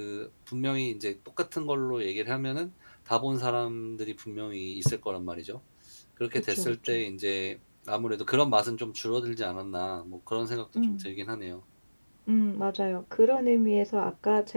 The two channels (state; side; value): inverted; both; correlation -1.00